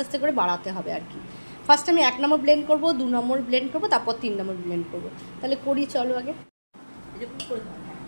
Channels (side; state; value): both; inverted; correlation -1.00